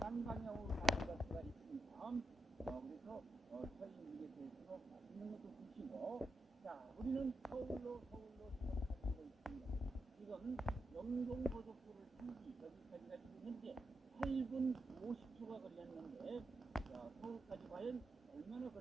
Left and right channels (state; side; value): normal; both; correlation 0.86